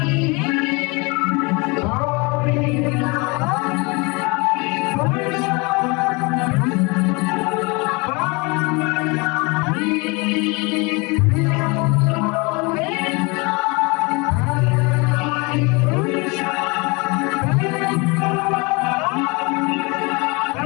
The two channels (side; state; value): right; quieter; 28.0 dB